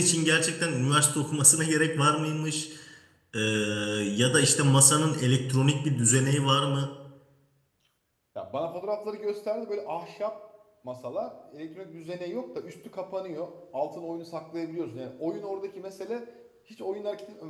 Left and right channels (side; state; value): both; identical; correlation 1.00